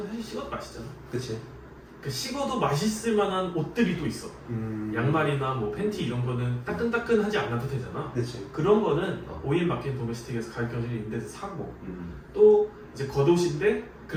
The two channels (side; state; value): both; identical; correlation 1.00